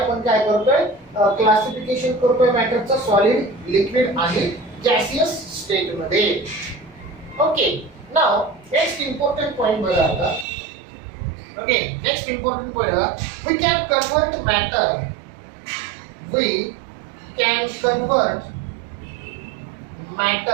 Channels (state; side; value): drops out; left; at 10.5 s